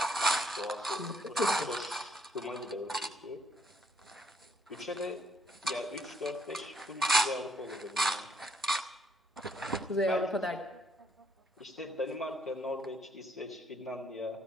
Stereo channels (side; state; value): both; normal; correlation 0.69